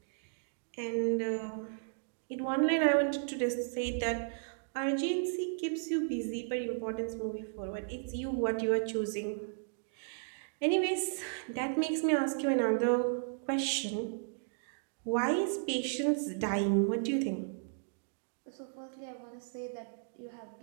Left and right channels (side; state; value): left; silent; digital silence